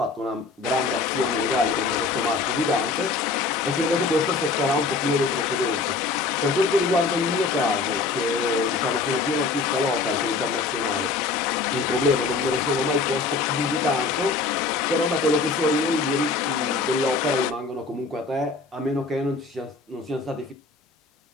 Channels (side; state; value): right; quieter; 4.1 dB